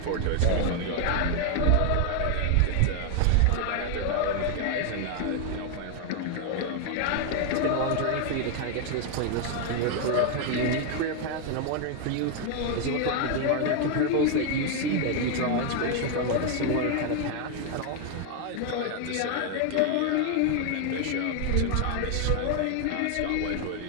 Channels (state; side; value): different; both; correlation 0.00